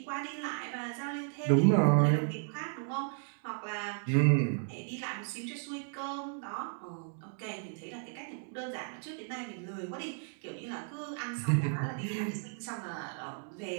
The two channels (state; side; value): silent; left; 55 dB below the other